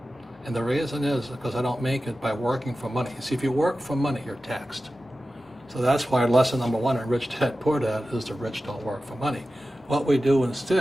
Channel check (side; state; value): both; normal; correlation 0.94